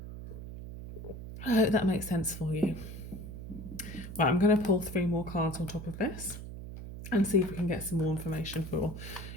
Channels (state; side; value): noise; right; hum, 10 dB below the sound